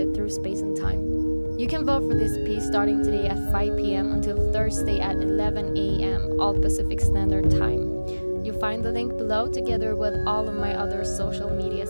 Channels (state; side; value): inverted; both; correlation -1.00